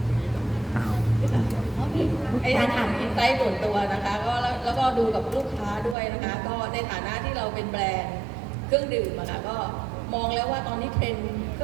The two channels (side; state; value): left; drops out; at 6.0 s